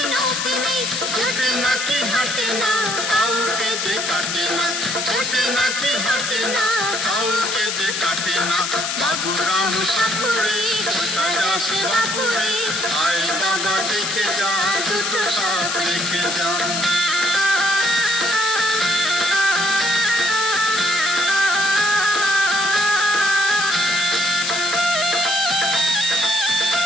নখ নেই, ছোটে নাকি হাঁটে না, কাউকে যে কাটে না, ছোটে নাকি হাঁটে না, কাউকে যে কাটে না। বাবুরাম সাপুরে, কোথায় আসে বাপুরে, আয় বাবা দেখে যা, দুটো সাপ দেখে যা।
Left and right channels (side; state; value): left; noise; hiss, 2 dB below the sound